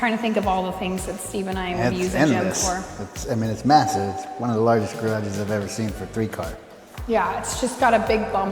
to think of all the things that Steve and I would use a gym for. It's massive. It's one of the largest garages I've ever seen for 3-car. Yeah, it's just got a big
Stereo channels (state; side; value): identical; both; correlation 1.00